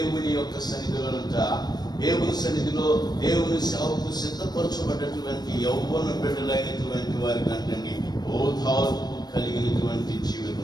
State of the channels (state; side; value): late; right; 0.19 ms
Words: యొక్క సన్నిధిలోనంట, దేవుని సన్నిధిలో దేవుని సేవకు సిద్ధపరచబడ్డటువంటి యౌవన బిడ్డలైనటువంటి వారికి అంటండి ఓదార్పు కలిగినటువంటి